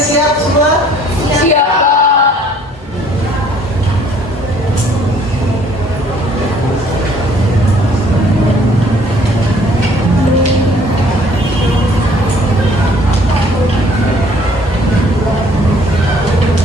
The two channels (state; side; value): normal; both; correlation 0.58